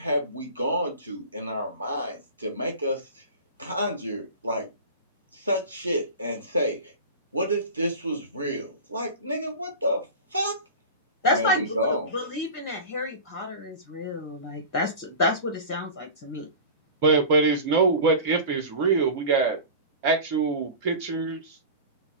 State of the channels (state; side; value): inverted; both; correlation -0.33